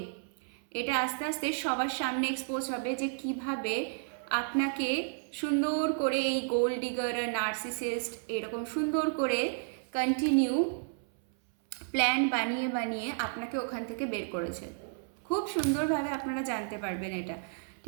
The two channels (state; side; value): silent; left; 56 dB below the other